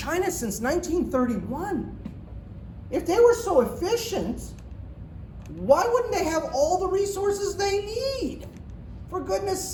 since 1931. If they were so efficient, why wouldn't they have all the resources they need? For goodness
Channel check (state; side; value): identical; both; correlation 1.00